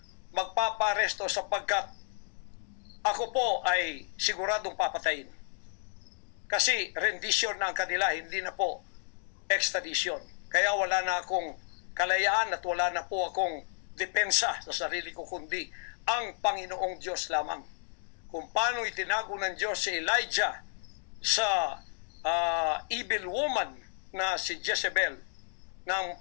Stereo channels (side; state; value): right; silent; digital silence